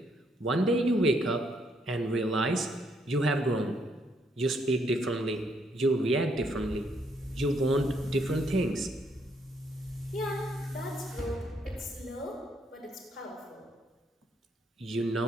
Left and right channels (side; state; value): both; normal; correlation 0.72